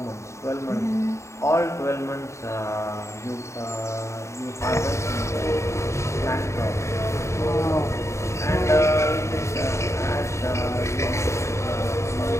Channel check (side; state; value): right; late; 0.14 ms